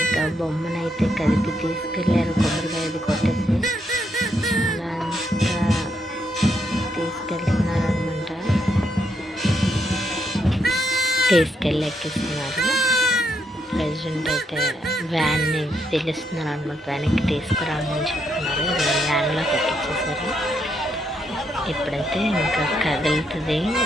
బొమ్మనైతే కదిపి తీసుకెళ్ళారు, కొబ్బరికాయ అది కొట్టేసి అలా అంతా తీసుకెళ్తున్నారు అనమాట. తీసుకెళ్ళి ఎక్కిస్తున్నారు. ప్రెసిడెంట్ అయితే వ్యాన్ని పిలుస్తున్నారు అనమాట, వ్యాన్కి తీసుకురామని చెప్తున్నారు. వ్యాన్లోకి ఎక్కించేసారు. ఇప్పుడైతే ఇంకా కదులుతుంది.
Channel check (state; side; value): normal; both; correlation 0.78